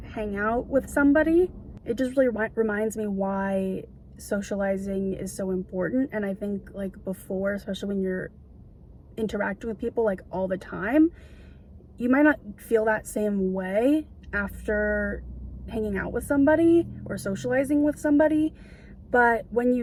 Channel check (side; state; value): both; identical; correlation 1.00